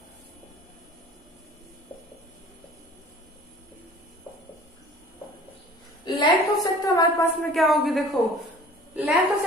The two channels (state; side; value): normal; both; correlation 0.47